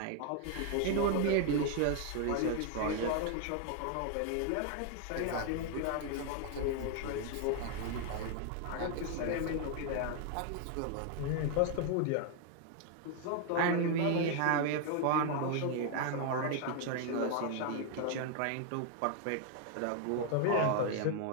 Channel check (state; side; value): different; both; correlation 0.00